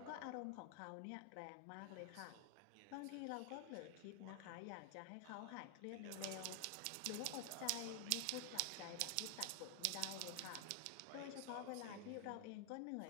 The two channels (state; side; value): different; both; correlation 0.00